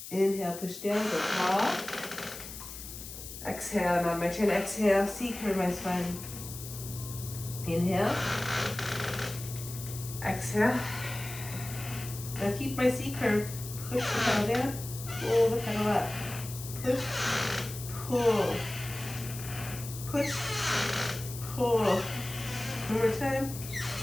Inhale, push down, go tall. Exhale, and on my chin, exhale, C-curve my spine. Inhale. Exhale. Now keep my C-curve. Push the pedal down, pull the pedal up. Push, pull. Push, pull. One more time.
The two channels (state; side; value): noise; left; hiss, 11 dB below the sound